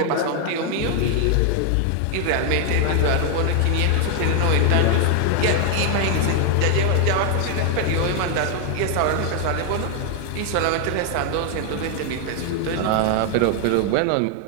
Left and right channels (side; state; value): both; different; correlation 0.00